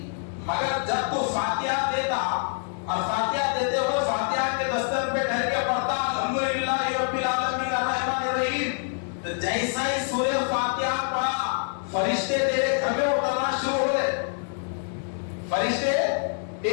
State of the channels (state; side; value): silent; right; digital silence